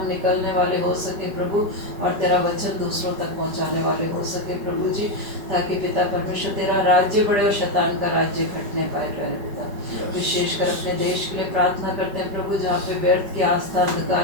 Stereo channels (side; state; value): left; late; 5.1 ms